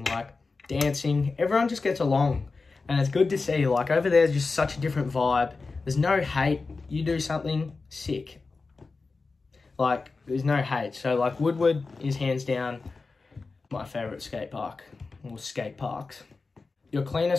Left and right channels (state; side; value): quieter; right; 4.0 dB